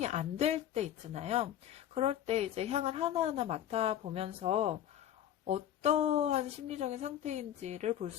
안 될 때 있잖아요. 그럴 때 이제 향을 하나하나 맡아보면서 어떠한 심리적인 상태인지를 볼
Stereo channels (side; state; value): right; quieter; 11.1 dB